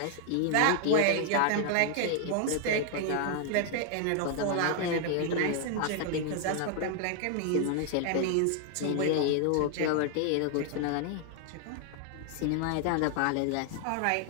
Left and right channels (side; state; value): both; different; correlation 0.00